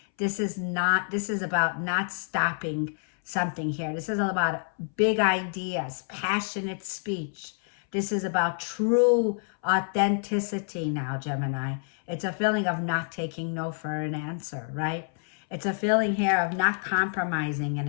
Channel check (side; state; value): right; silent; 60 dB below the other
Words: this is about not stopping something here. This is all about big ideas, passionate speech. This is about true authenticity now, Gemini. It's a feeling of not taking no for an answer, right? It's a feeling here of not compromising